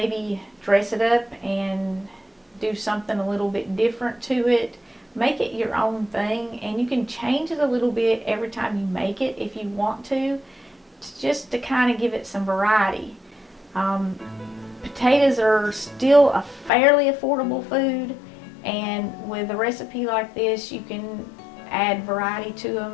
dress it up and do something a little bit different to it. Make it your own thing, and you can change it a little bit every time you make it if you want to, just to kind of give it some variety. Potatoes are still a fairly affordable food, and with a recipe like this, you can add variety to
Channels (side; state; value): right; drops out; at 16.7 s